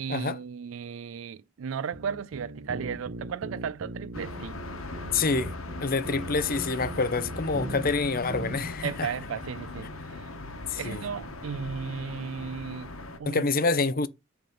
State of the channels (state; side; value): normal; both; correlation 0.15